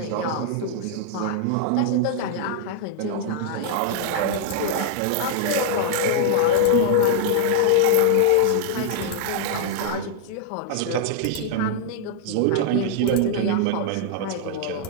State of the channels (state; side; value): different; both; correlation -0.01